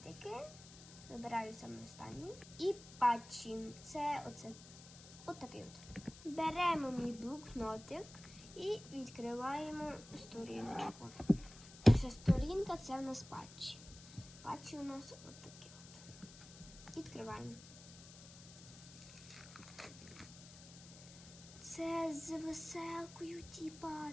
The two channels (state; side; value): noise; left; hiss, 17 dB below the sound